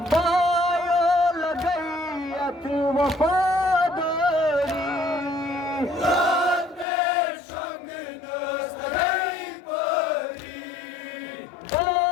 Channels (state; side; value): drops out; right; at 6.9 s